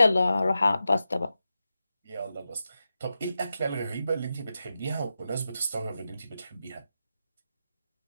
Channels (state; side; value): inverted; both; correlation -0.90